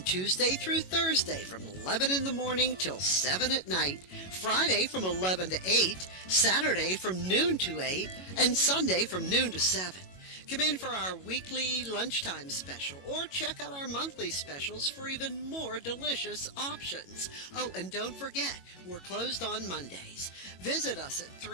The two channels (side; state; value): right; late; 22 ms